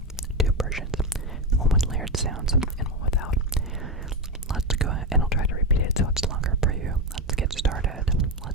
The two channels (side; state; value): both; normal; correlation 0.14